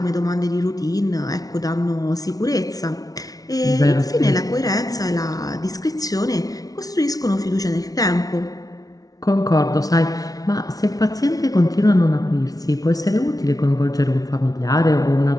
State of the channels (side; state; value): right; late; 0.18 ms